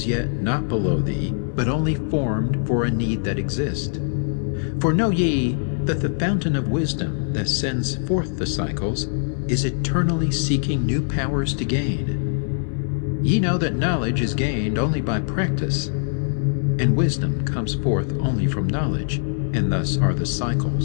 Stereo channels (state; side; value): silent; right; digital silence